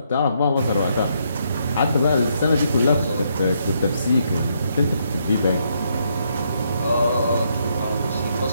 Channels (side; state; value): both; inverted; correlation -0.75